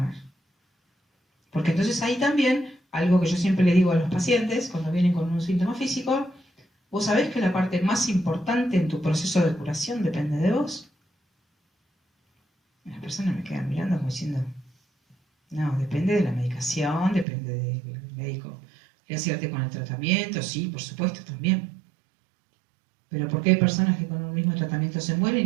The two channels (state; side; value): drops out; left; at 17.2 s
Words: Porque entonces ahí también, algo que yo siempre le digo a los pacientes cuando vienen con un síntoma físico, vos sabés que la parte más importante en tu proceso de curación depende de vos. Las personas me quedan mirando como diciendo, no, depende de la medicación, depende del médico. ¿Le acierte con el tratamiento? Sí, por supuesto, también. Pero ¿por qué hay personas que con el mismo tratamiento se